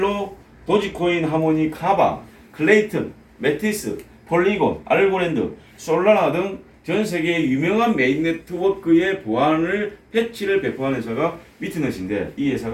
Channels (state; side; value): identical; both; correlation 1.00